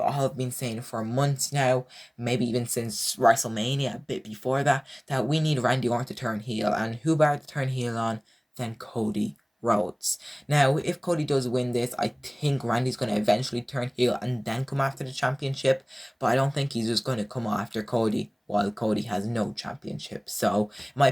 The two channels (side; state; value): both; identical; correlation 1.00